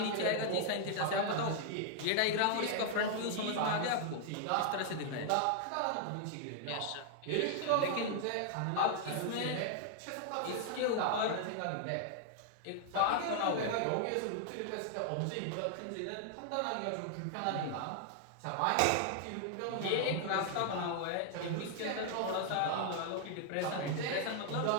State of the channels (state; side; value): different; both; correlation 0.00